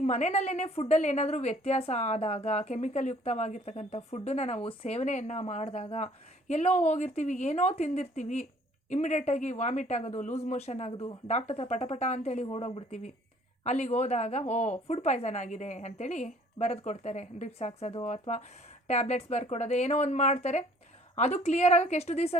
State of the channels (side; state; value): both; normal; correlation 0.57